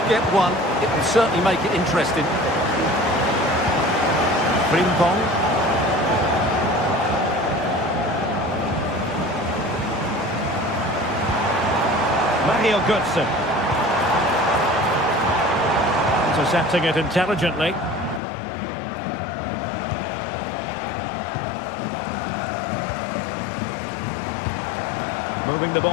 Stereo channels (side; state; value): right; drops out; at 18.2 s